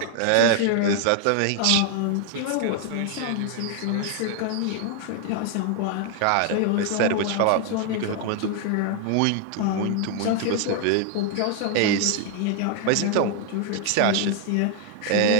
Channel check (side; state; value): both; different; correlation 0.00